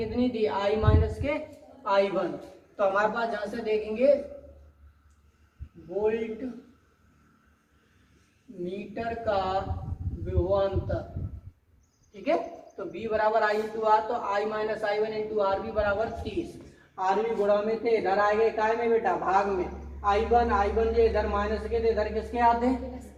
थी आई माइनस के आई वन। तो हमारे पास जहां से देखेंगे वोल्ट मीटर का विभवांतर, ठीक है। तो B बराबर आई इंटू आर, तो I minus I one into R B बराबर 30। आर बी गुणा में थे, इधर आ गए काय में बेटा भाग में। आई वन जो इधर माइनस के थे इधर किसके आते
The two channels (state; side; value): identical; both; correlation 1.00